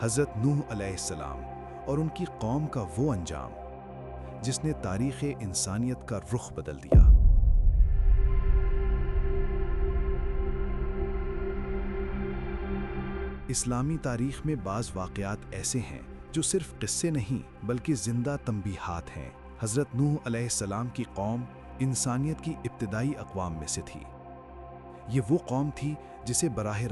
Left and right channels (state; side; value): identical; both; correlation 1.00